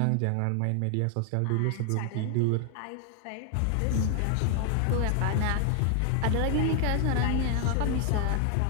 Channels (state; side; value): different; both; correlation 0.00